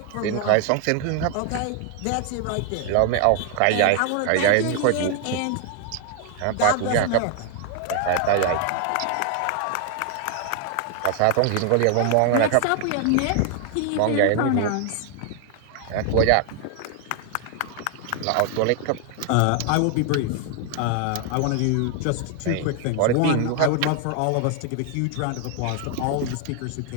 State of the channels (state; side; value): different; both; correlation 0.00